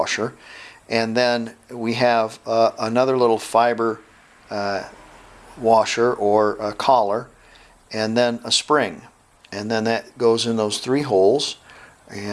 and then we have another little fiber washer or a collar, and then a spring, and then that goes in those three holes,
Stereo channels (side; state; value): both; identical; correlation 1.00